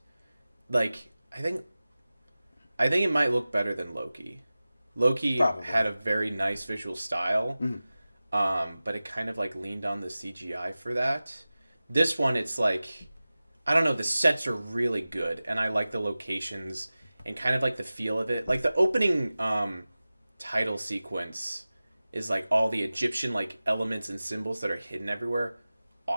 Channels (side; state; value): both; inverted; correlation -0.97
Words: Like, I think it might look better than Loki. Loki had a very nice visual style, but it kind of like leaned on the CGI for that. This one, it's like, I don't know, the sets are really good, and I like the locations and kind of like the feel of it. Like the opening title sequence is like all the Egyptian like elements and symbols that are hidden everywhere.